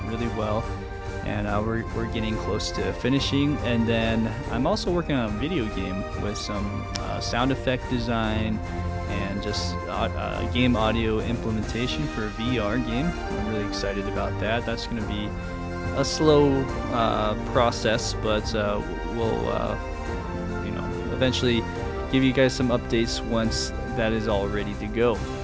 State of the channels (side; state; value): both; identical; correlation 1.00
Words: really well, and we're getting close to finishing. And then I'm also working on a video game with some sound effect design and just game audio implementation for a VR game. I'm really excited about that. That's going to be a slow process, but we'll eventually give you guys some updates once that is all ready to go.